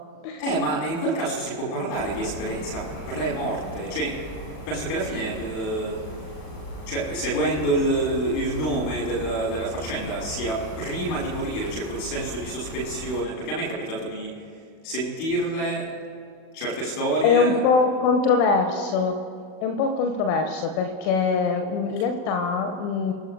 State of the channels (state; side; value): late; right; 39 ms